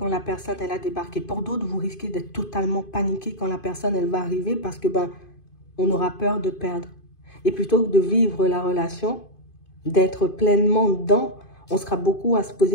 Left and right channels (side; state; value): right; late; 2.5 ms